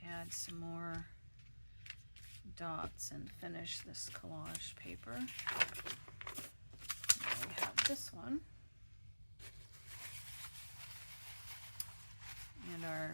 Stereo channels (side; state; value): both; inverted; correlation -1.00